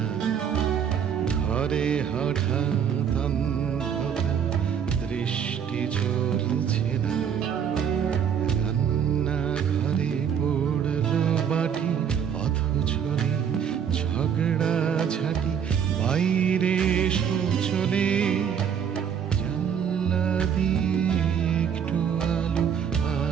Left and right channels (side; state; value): left; quieter; 7.9 dB